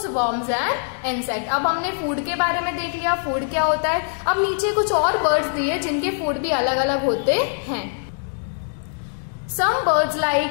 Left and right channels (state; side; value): silent; right; digital silence